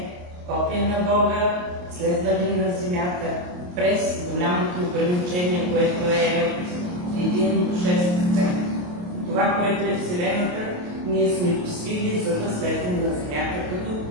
копия на Бога, следвали на земята през голямото ограничение, което е 1 до 6. Това, което е Вселената, ние сме посвили, за да слезем на земята като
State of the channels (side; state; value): left; late; 28 ms